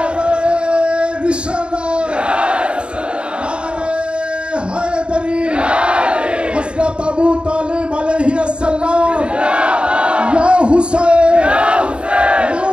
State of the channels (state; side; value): late; left; 0.054 ms